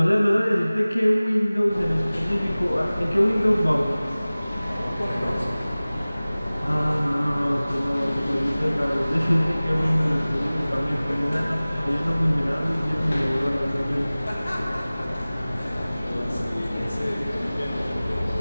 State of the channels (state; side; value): inverted; both; correlation -0.98